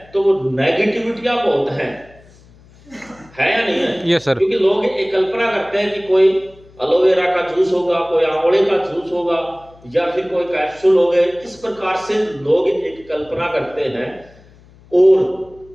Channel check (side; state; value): left; noise; hum, 26 dB below the sound